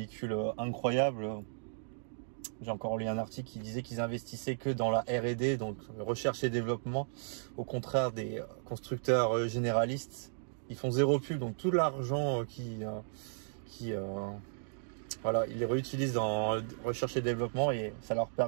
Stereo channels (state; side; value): silent; left; digital silence